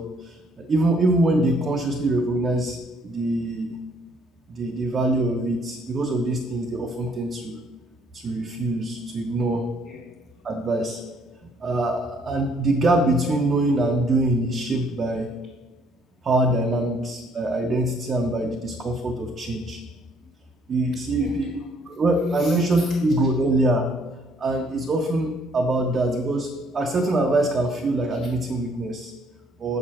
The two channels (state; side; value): normal; both; correlation 0.65